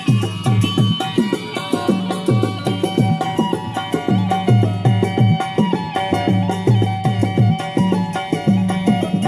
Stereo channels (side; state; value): both; identical; correlation 1.00